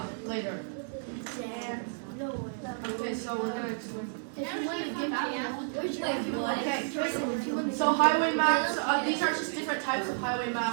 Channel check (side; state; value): left; silent; digital silence